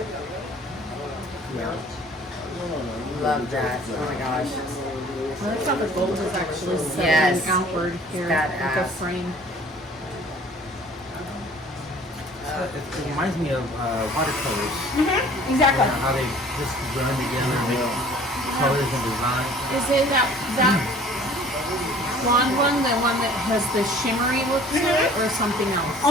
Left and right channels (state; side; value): normal; both; correlation 0.51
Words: Love that. Oh my gosh. Well, that's how the gold is actually set Yes. outward here with Badass. the frame. It reminds me of watercolors. Exactly. How they just blend together and make colors and designs. Is it that blonde one, the one that has the shimmery look to it, or something else?